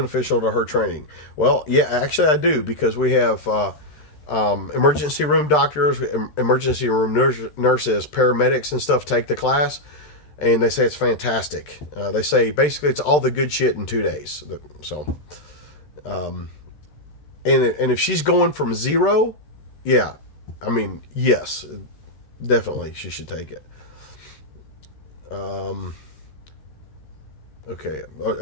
to her training? Well, yeah, actually I do, because we have emergency room doctors, emergency room nurses, paramedics and stuff take the class. And they say it's fantastic. They say basically it's all the good shit in 2 days. So, and if she's going from zero, yeah, I mean, yes, definitely she should take it. Okay,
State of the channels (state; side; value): late; right; 13 ms